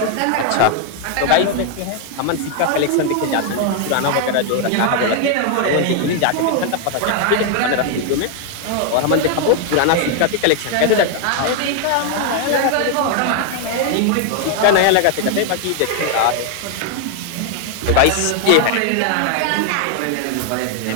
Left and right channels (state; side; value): different; both; correlation 0.00